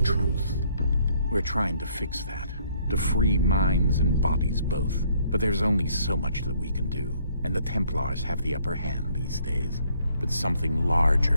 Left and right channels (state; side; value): inverted; both; correlation -0.66